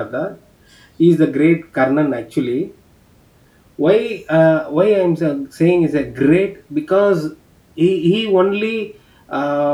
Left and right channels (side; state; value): both; identical; correlation 1.00